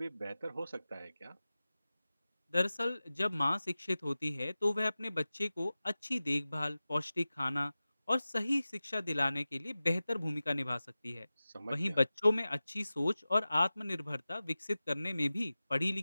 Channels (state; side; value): inverted; both; correlation -0.96